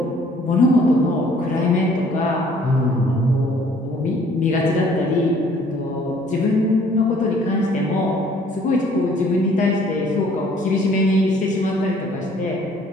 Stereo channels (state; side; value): normal; both; correlation 0.58